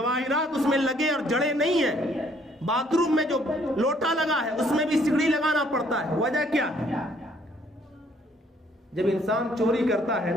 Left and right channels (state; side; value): normal; both; correlation 0.64